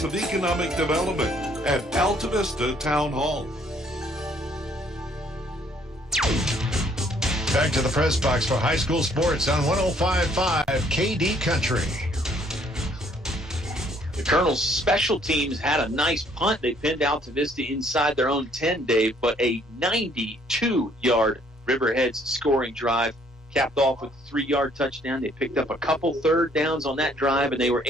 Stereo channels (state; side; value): normal; both; correlation 0.63